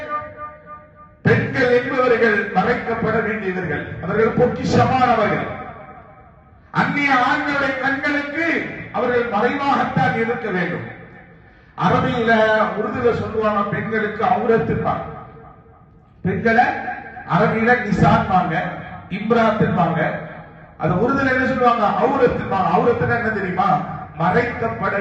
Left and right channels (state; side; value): identical; both; correlation 1.00